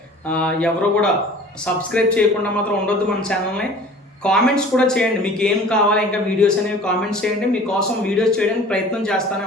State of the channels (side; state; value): both; normal; correlation 0.45